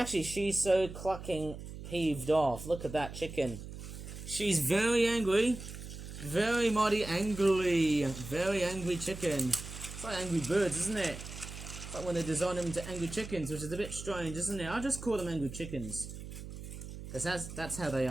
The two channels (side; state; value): right; noise; hum, 11 dB below the sound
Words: clucking peeved off. Look at that chicken. She's very angry. Very mighty angry. Very angry chicken. It's like Angry Birds, isn't it? It's like when they design them into angry chickens, which is a bit strange, isn't it? I'll just call them angry chickens. Because that's how they